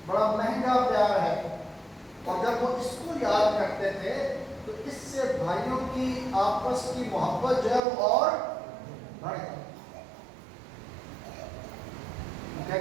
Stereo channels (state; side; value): drops out; left; at 7.8 s